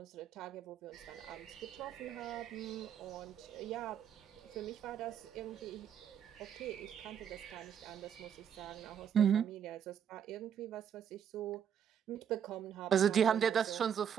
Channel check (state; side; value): quieter; left; 8.5 dB